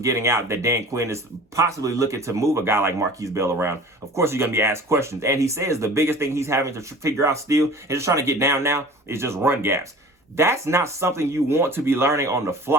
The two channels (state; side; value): normal; both; correlation 0.43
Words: out that Dan Quinn is possibly looking to move a guy like Marquise Bell around, of course, you're going to be asked questions. And he says the biggest thing he's having to figure out still and just trying to get down now is just run gaps. That's not something you want to be learning on the